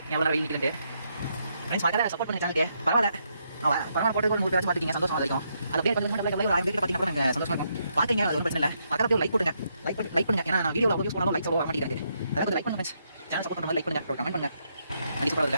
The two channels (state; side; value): inverted; both; correlation -0.78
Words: எவ்வளோ வெயில் நிற்கிறது ஃப்ரெண்ட்ஸ். மறக்காத சப்போர்ட் பண்ணி சேனலுக்கு பரவாயில்ல பரவாயில்ல போட்டு கூட வச்சு பார்த்துக்கிங்க சந்தோஷம் இருக்கும். அது அப்படியே கொஞ்சம் பார்த்தீங்கன்னா நாங்கள் சந்தோஷமாக இருக்கும். பார்த்துங்க அது ஒன்றும் பிரச்சனை இல்லை. பக்கத்தில் லைக் போட்டுங்க லைக் பண்ணுங்க. ஏன்னா நான் வீடியோவில் யூஸ் பண்ணாலும் லைக்ஸ் வர மாட்டேங்குது. அதாவது கொஞ்சம் லைக் பண்ணுங்க ஃப்ரெண்ட்ஸ். சேனல் சப்போர்ட் பண்ணுங்க லைக் பண்ணுங்க கமெண்ட் பண்ணுங்க. அது